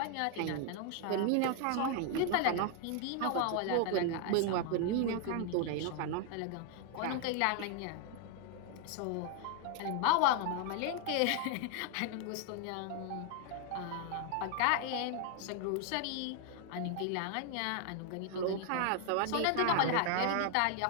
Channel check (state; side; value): different; both; correlation 0.00